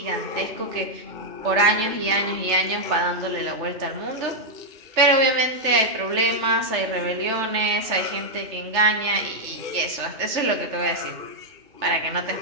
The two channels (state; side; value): late; left; 3.3 ms